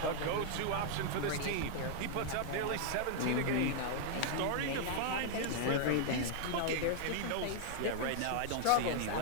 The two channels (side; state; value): both; different; correlation 0.00